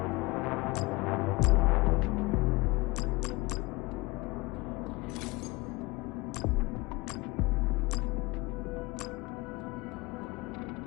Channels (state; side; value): quieter; right; 23.5 dB